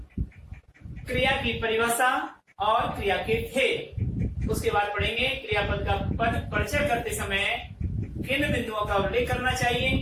क्रिया की परिभाषा और क्रिया के खेल, उसके बाद पढ़ेंगे क्रियापद का पद परिचय करते समय किन बिंदुओं का उल्लेख करना चाहिए।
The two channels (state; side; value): identical; both; correlation 1.00